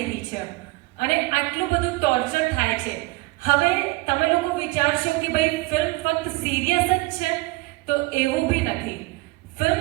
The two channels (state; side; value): quieter; left; 22.4 dB